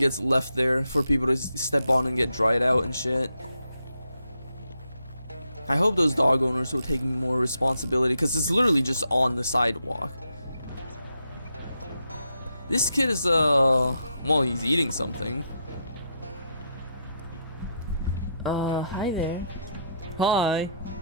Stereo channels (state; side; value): inverted; both; correlation -0.78